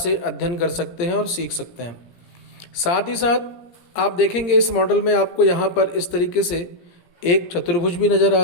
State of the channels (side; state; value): right; late; 17 ms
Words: अध्ययन कर सकते हैं और सीख सकते हैं। साथ ही साथ आप देखेंगे इस मॉडल में आपको यहाँ पर इस तरीके से एक चतुर्भुज भी नज़र आ